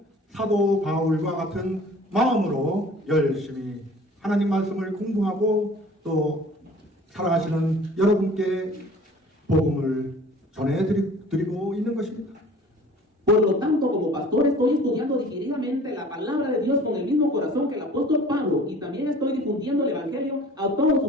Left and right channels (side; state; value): both; normal; correlation 0.48